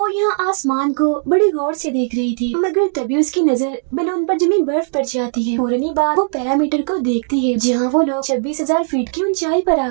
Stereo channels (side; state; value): left; silent; digital silence